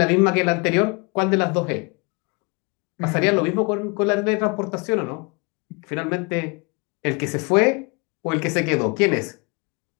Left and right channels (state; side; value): quieter; right; 29.9 dB